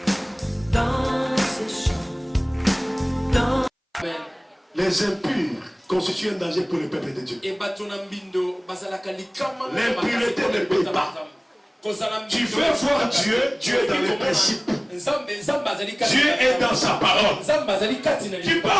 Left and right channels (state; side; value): identical; both; correlation 1.00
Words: dans ces champs, dans... Les impurs constituent un danger pour le peuple de Dieu. L'impureté ne paye pas. Tu veux voir Dieu, Dieu est dans les principes. Dieu est dans sa parole. Tu peux